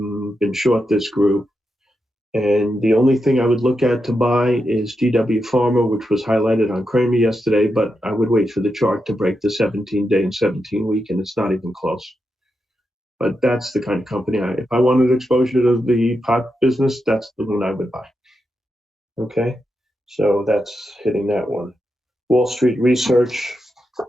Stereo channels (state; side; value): normal; both; correlation 0.86